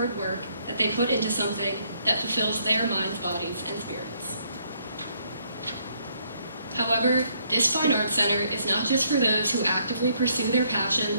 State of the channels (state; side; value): inverted; both; correlation -0.69